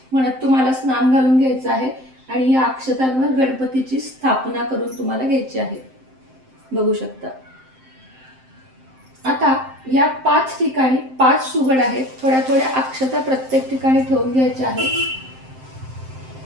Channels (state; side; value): late; left; 7.7 ms